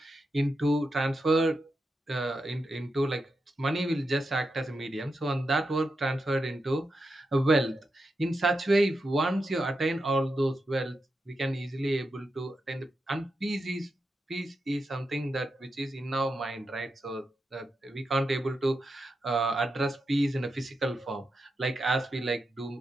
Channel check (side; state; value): both; normal; correlation 0.87